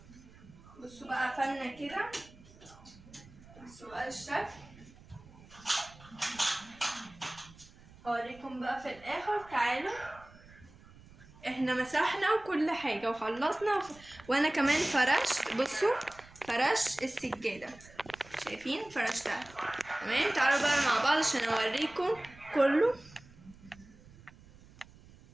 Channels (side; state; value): right; noise; rumble, 22 dB below the sound